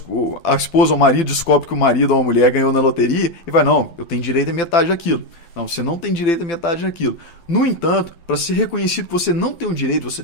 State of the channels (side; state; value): right; late; 12 ms